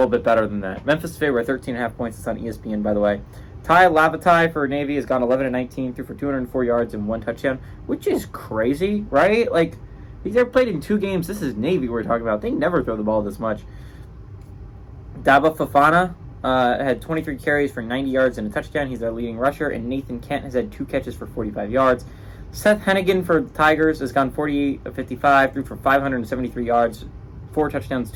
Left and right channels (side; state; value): both; identical; correlation 1.00